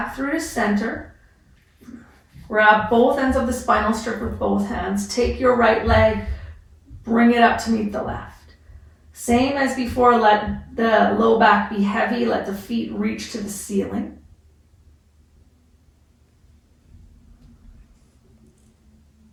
through to center. Grab both ends of the spinal strip with both hands. Take your right leg, bring it up to meet the left. Same as before, let the low back be heavy, let the feet reach to the ceiling.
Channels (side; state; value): both; identical; correlation 1.00